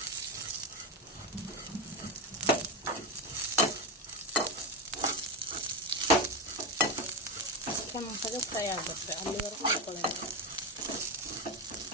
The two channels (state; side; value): normal; both; correlation 0.14